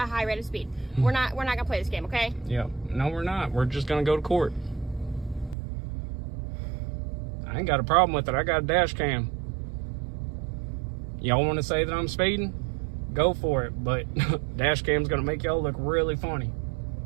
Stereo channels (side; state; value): left; drops out; at 5.6 s